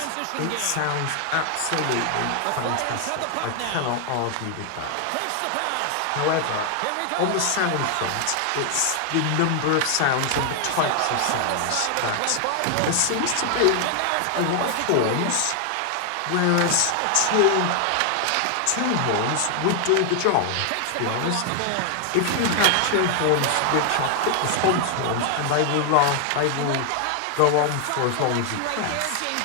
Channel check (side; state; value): both; different; correlation 0.00